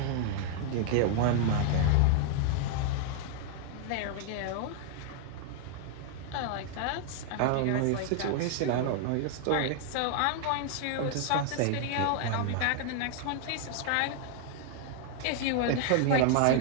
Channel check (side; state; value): both; different; correlation 0.00